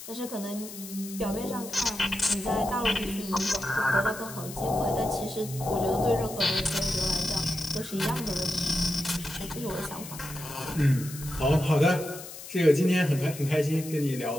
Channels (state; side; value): noise; left; hiss, 13 dB below the sound